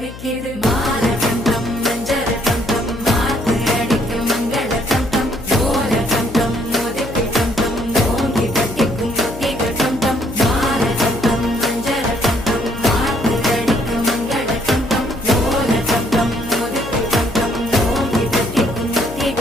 மால கண்டம் மஞ்சள் கண்டம் மாத்து அடிக்கும் மங்கள கண்டம் ஓல கண்டம் மோதிக்கு கண்டம் ஓங்கி தட்டிக்கும் முத்திக கண்டம் மால கண்டம் மஞ்சள் கண்டம் மாத்து அடிக்கும் மங்கள கண்டம் ஓல கண்டம் மோதிக்கு கண்டம் ஓங்கி தட்டிக்கும்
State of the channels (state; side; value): noise; left; hum, 14 dB below the sound